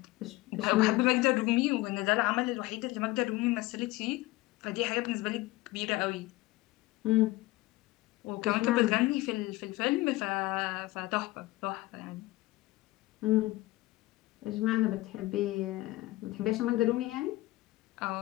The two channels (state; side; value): quieter; right; 19.1 dB